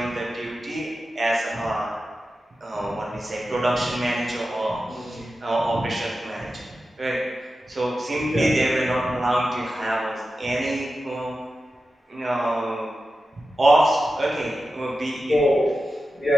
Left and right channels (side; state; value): both; normal; correlation 0.92